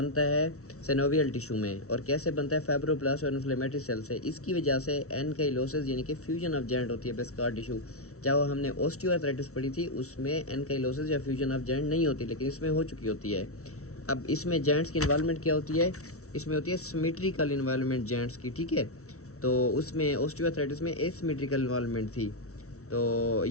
है सिनोवियल टिश्यू में। और कैसे बनता है? फाइब्रोब्लास्ट और इन्फ्लेमेटरी सेल से। इसकी वजह से एनकाइलोसिस यानी कि फ्यूजन ऑफ जॉइंट होती है बेस्कार टिश्यू। चाहे हमने ऑस्टियोआर्थराइटिस पढ़ी थी, उसमें एनकाइलोसिस या फ्यूजन ऑफ जॉइंट नहीं होती, लेकिन इसमें हो चुकी होती है। अब इसमें जॉइंट्स की इन्वॉल्वमेंट क्या होती है? इसमें होती है सिमेट्रिकल इन्वॉल्वमेंट जॉइंट्स की, ठीक है। तो उसमें ऑस्टियोआर्थराइटिस में एसिमेट्रिकल इन्वॉल्वमेंट थी। तो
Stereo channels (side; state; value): right; late; 0.64 ms